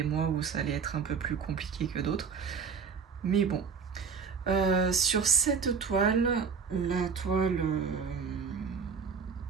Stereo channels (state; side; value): quieter; left; 5.9 dB